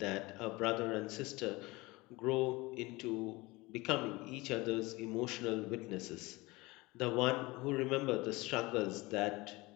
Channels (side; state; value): right; quieter; 22.4 dB